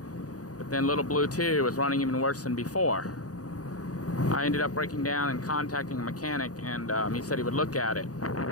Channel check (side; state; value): right; late; 0.67 ms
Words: But then Lil Blue II was running even worse than before. I ended up breaking down and contacting a mechanic, and he said he would look at it.